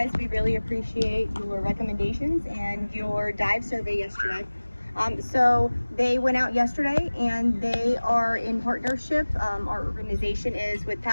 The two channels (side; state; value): both; inverted; correlation -1.00